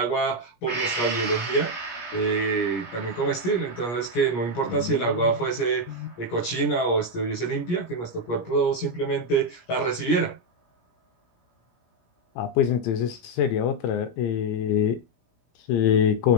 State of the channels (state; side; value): late; right; 17 ms